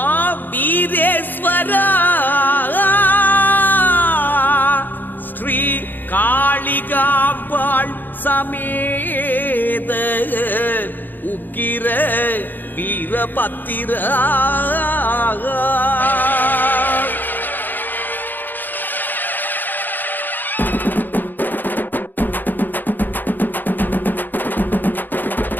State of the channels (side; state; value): right; late; 0.089 ms